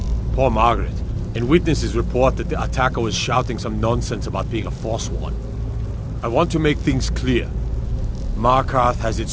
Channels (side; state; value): both; identical; correlation 1.00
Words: poor Margaret, and witnesses report that the attacker was shouting some nonsense about being a Forsworn. I want to make things clear. Markarth has